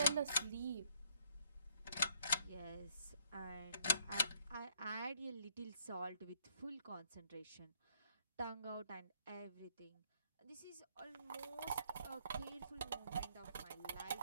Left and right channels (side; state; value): both; inverted; correlation -0.66